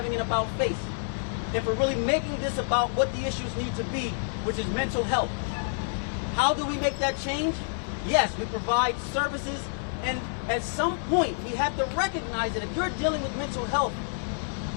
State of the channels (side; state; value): right; silent; digital silence